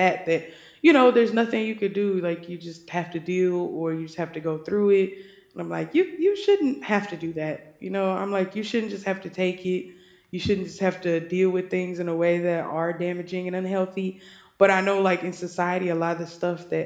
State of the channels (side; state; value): both; identical; correlation 1.00